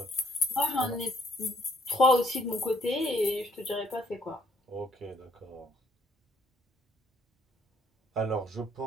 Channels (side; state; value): both; normal; correlation 0.68